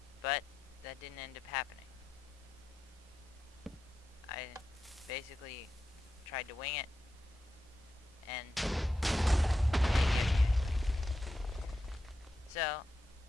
but that didn't end up happening. I basically tried to wing it, and so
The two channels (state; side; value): normal; both; correlation 0.88